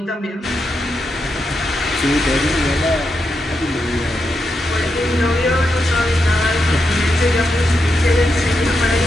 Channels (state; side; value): normal; both; correlation 0.85